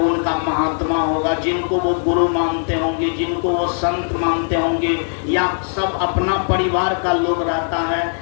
महात्मा होगा, जिनको वो गुरु मानते होंगे, जिनको वो संत मानते होंगे, या सब अपना परिवार का लोग रहता है,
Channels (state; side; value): silent; right; 62 dB below the other